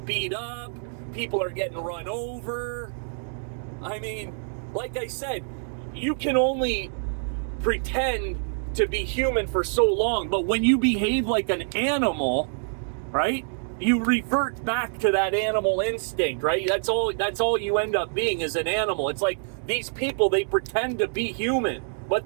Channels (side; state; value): left; silent; digital silence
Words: beat up, people are getting run over. I mean, like I said, you can only pretend to be human for so long, but when you behave like an animal, right? You revert back to that animal instinct, right? That's all you end up being, is an animal. It's like these people, they pretend to be human,